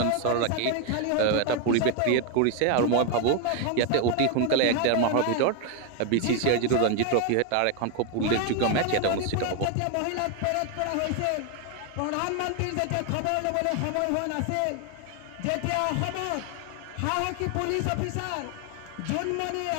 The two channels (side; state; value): both; different; correlation 0.01